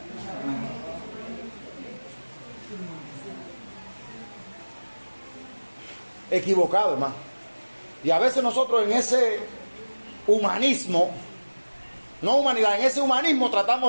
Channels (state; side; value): inverted; both; correlation -1.00